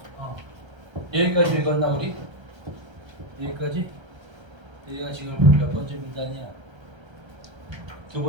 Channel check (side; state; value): left; late; 1.3 ms